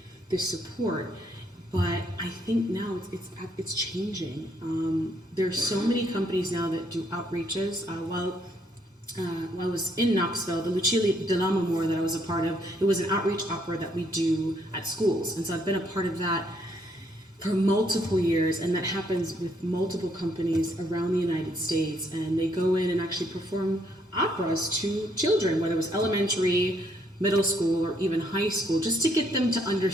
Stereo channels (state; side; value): normal; both; correlation 0.71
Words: this support. But I think now it's changing. There's so many companies now that do outreaches. While I was in Knoxville, the Lucia dell'Amore that I was a part of, it was an outreach opera that we do at schools. And so I've been a part of that for multiple years, and that happens with multiple companies around the United States. And they go in and actually perform operas to children, whether it was elementary, middle school, or even high school, just to get them to